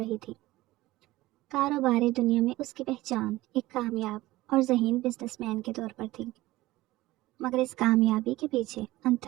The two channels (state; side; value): quieter; left; 17.9 dB